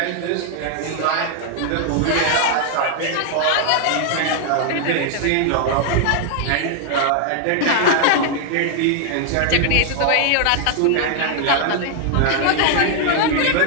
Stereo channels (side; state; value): both; different; correlation 0.00